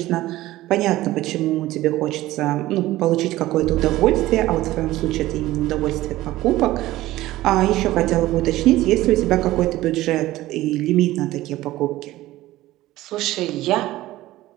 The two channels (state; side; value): quieter; left; 16.4 dB